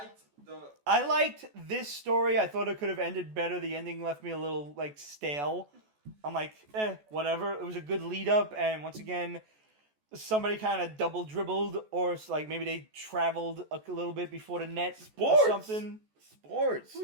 the. I liked this story. I thought it could have ended better. The ending left me a little, stale. I'm like, whatever. It was a good lead up, and once again, somebody kind of double dribbled, or it's like maybe they traveled a little bit before the net Sports. or something. Sports.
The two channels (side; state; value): left; late; 14 ms